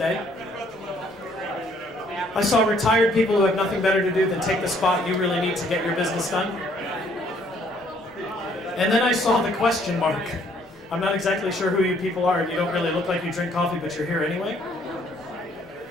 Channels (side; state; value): both; normal; correlation 0.64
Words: I saw retired people who have nothing better to do than take the spot you really need to get your business done. And then I saw the question mark. I'm not exactly sure who you people are, and you don't really look like you drink coffee, but you're here anyway.